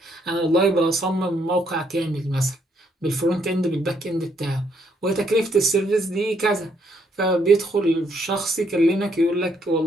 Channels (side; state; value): both; normal; correlation 0.71